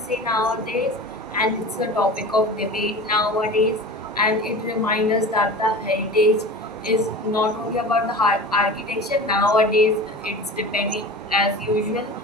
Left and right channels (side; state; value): both; normal; correlation 0.34